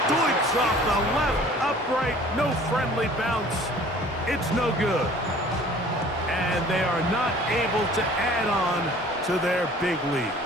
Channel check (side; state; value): both; normal; correlation 0.50